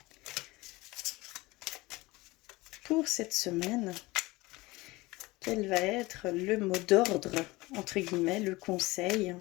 pour cette semaine. Quel va être le mot d'ordre, entre guillemets, le conseil,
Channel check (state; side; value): quieter; right; 21.4 dB